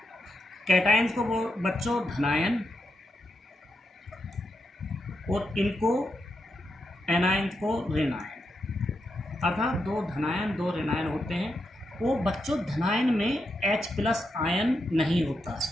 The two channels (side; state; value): both; normal; correlation 0.84